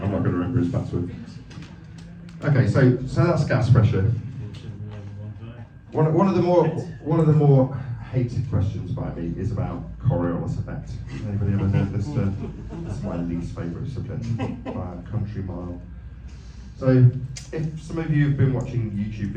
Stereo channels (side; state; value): both; identical; correlation 1.00